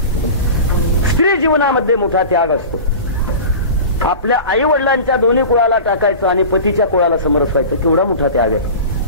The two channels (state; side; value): inverted; both; correlation -0.34